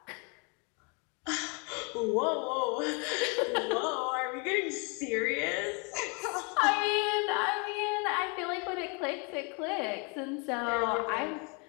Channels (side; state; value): right; quieter; 33.7 dB